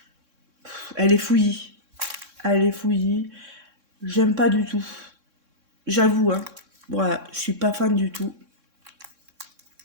Elle est fouillie. Elle est fouillie. J'aime pas du tout. J'avoue, hein. Voilà, je suis pas fan du tout.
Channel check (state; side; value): late; left; 3.6 ms